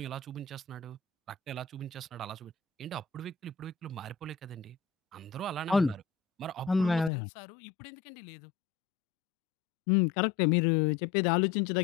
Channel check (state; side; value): drops out; right; at 7.1 s